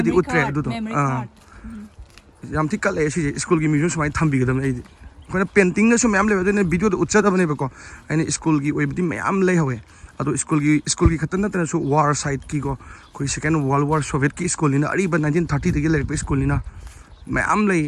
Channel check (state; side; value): identical; both; correlation 1.00